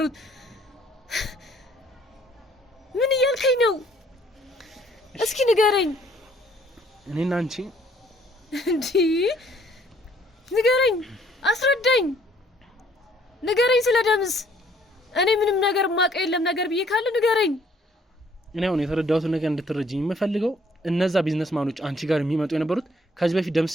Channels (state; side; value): normal; both; correlation 0.62